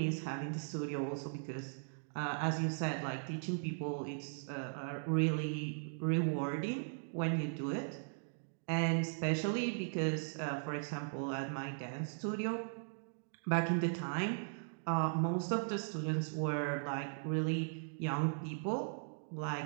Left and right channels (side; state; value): left; silent; digital silence